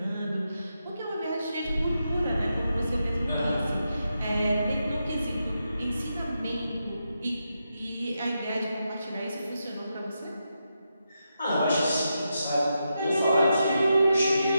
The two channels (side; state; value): both; inverted; correlation -0.86